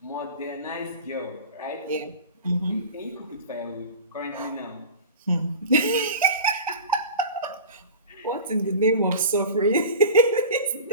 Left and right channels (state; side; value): inverted; both; correlation -0.35